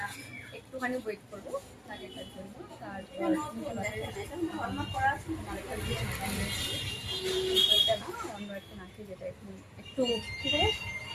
একটুখানি ওয়েট করবো নাকেরটার জন্য। তারপর আমরা একটা নাকে যেটা একটু একটু কিছু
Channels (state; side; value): identical; both; correlation 1.00